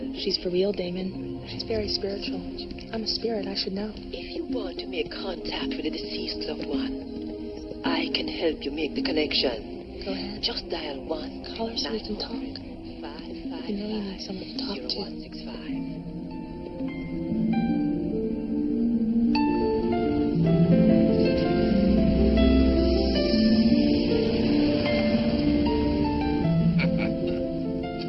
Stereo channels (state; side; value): identical; both; correlation 1.00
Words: She's for real, Damon. She's very spiritual. I'm a spirit, I should know. If you want to make contact with a deceased loved one, I can help you make the connection. Go ahead. Just dial 1. Call her so we can talk. You know you need someone to talk to.